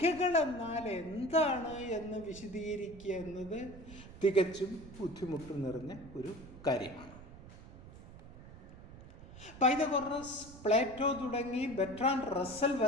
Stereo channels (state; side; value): noise; right; rumble, 16 dB below the sound